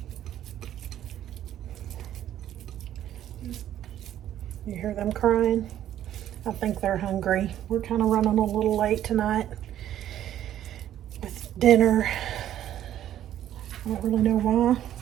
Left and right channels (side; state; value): left; quieter; 11.6 dB